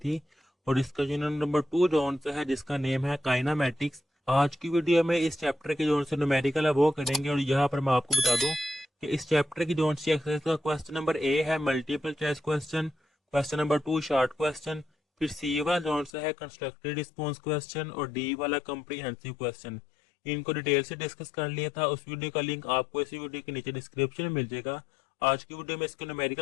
और इसका यूनिट नंबर 2 जोन से है जिसका नेम है काइनामेटिक्स। आज की वीडियो में इस चैप्टर के जोन से न्यूमेरिकल है वो करेंगे और यहाँ पर मैं आपको बता दूं कि इस चैप्टर की जोन से एक्सरसाइज का क्वेश्चन नंबर ए है multiple choice question, question number 2 short question, फिर सी वाला जोन से है कंस्ट्रक्टेड रिस्पॉन्स क्वेश्चन और डी वाला कॉम्प्रिहेंसिव क्वेश्चन। इनको डिटेल से डिस्कस कर लिया था। उस वीडियो का लिंक आपको इसी वीडियो के नीचे डिस्क्रिप्शन में मिल जाएगा। आज की वीडियो में इसको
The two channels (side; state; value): right; drops out; at 16.1 s